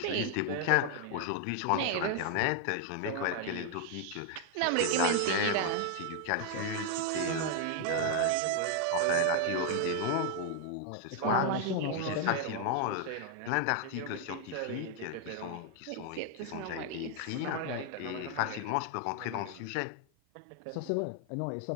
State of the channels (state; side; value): different; both; correlation 0.00